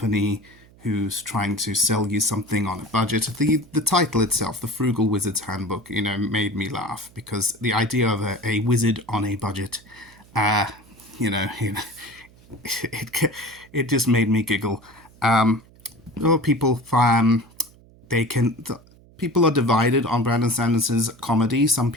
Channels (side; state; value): right; noise; hum, 26 dB below the sound